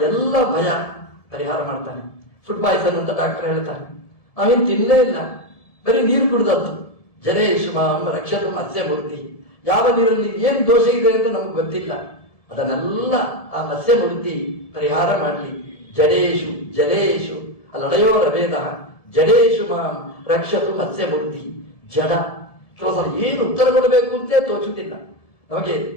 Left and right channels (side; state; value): right; late; 1.7 ms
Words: ಎಲ್ಲ ಭಯ ಪರಿಹಾರ ಮಾಡ್ತಾನೆ. ಫುಡ್ ಪಾಯ್ಸನ್ ಅಂತ ಡಾಕ್ಟರ್ ಹೇಳ್ತಾನೆ. ನಾವೇನು ತಿನ್ನಲೇ ಇಲ್ಲ, ಬರೀ ನೀರು ಕುಡಿದದ್ದು. ಜಲೇಶು ಮಾಂ ರಕ್ಷತು ಮತ್ಸ್ಯಮೂರ್ತಿ. ಯಾವ ನೀರಲ್ಲಿ ಏನು ದೋಷ ಇದೆ ಅಂತ ನಮ್ಗೆ ಗೊತ್ತಿಲ್ಲ, ಅದನ್ನೆಲ್ಲ ಆ ಮತ್ಸ್ಯಮೂರ್ತಿ ಪರಿಹಾರ ಮಾಡಲಿ. ಜಡೇಶು ಜಲೇಶು ಅಲ್ಲಡೆಯೋರ ವೇದ ಜಡೇಶು ಮಾಂ ರಕ್ಷತು ಮತ್ಸ್ಯಮೂರ್ತಿ. ಜಡ ಕೆಲವು ಸಲ ಏನು ಉತ್ತರ ಕೊಡಬೇಕು ಅಂತೇ ತೋಚುತ್ತಿಲ್ಲ, ನಮಗೆ